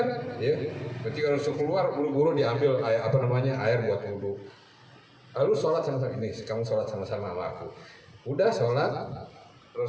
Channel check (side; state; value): both; identical; correlation 1.00